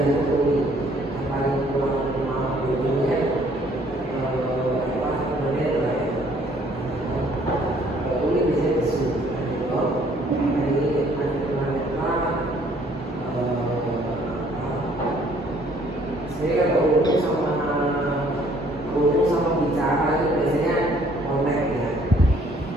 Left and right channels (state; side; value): normal; both; correlation 0.61